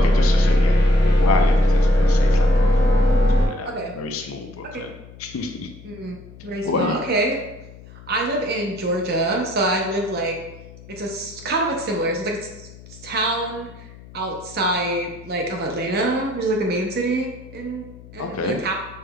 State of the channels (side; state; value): left; noise; hum, 19 dB below the sound